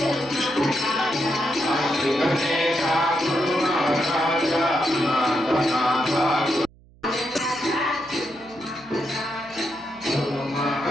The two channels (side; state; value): right; noise; hum, 27 dB below the sound